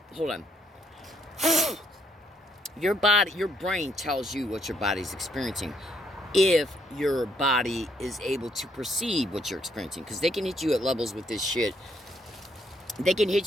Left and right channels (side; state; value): both; normal; correlation 0.71